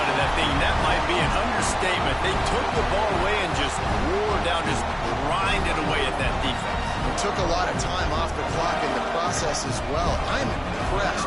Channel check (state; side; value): identical; both; correlation 1.00